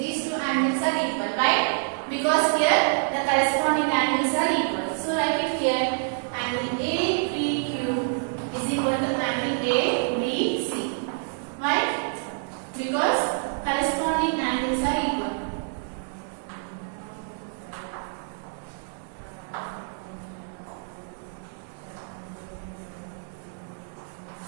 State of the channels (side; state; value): left; silent; 60 dB below the other